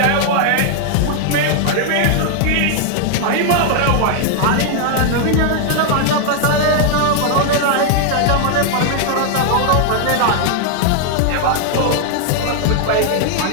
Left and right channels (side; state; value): both; different; correlation 0.00